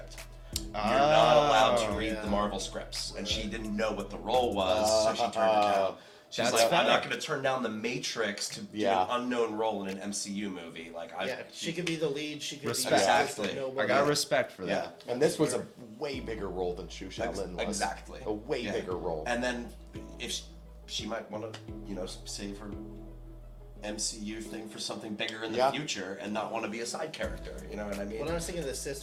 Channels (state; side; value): identical; both; correlation 1.00